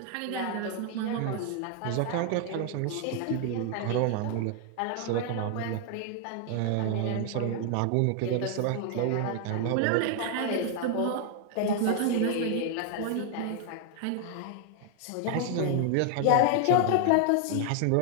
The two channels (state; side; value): different; both; correlation 0.00